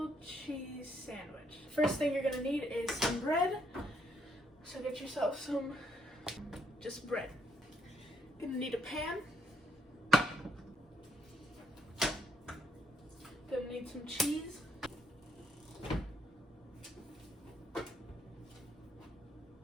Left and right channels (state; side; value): normal; both; correlation 0.73